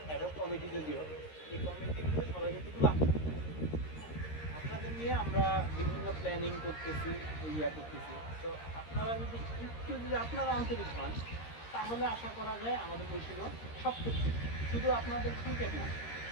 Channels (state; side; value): late; right; 13 ms